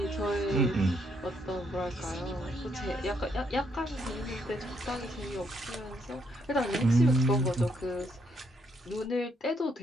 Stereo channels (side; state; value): both; normal; correlation 0.73